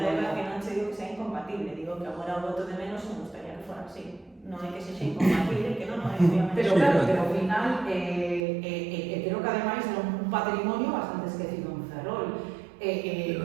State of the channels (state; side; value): drops out; left; at 8.5 s